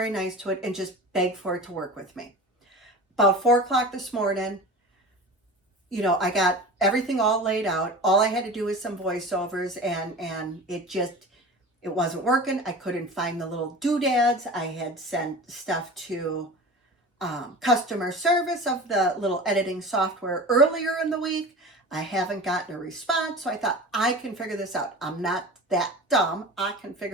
nice to it and just beg for it to work with me. About 4 o'clock this morning, I got everything all laid out. All I had to do was some voiceovers, and it wasn't working. I couldn't find the little doodads. I had sent stuff to customer service of the little editing software earlier in the week. I haven't gotten a response, so I thought, I can figure this out. I'm not that dumb. I can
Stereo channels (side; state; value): both; normal; correlation 0.34